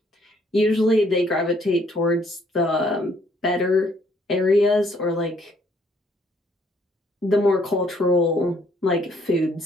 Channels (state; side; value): normal; both; correlation 0.66